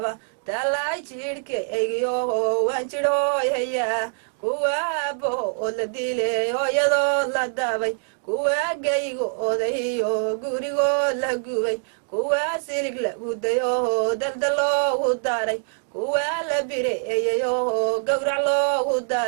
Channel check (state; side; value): silent; left; digital silence